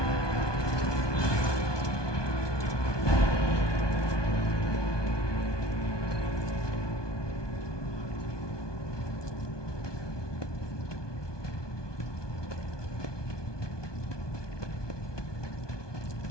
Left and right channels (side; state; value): right; late; 1.2 ms